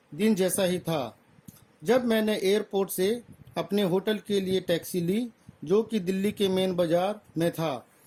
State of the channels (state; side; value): identical; both; correlation 1.00